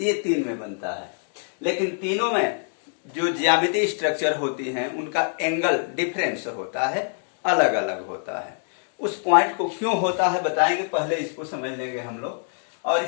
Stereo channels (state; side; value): silent; right; 59 dB below the other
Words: 3 में बनता है। लेकिन तीनों में जो ज्यामितीय स्ट्रक्चर होती हैं उनका एंगल डिफरेंस होता है, अलग अलग होता है। उस पॉइंट को क्यों होता है बताएंगे, पहले इसको समझ लेंगे हम लोग। और